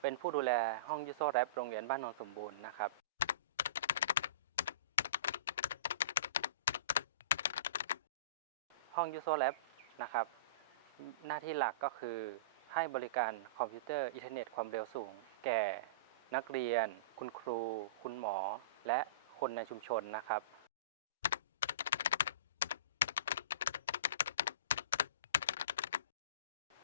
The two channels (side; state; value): both; inverted; correlation -0.31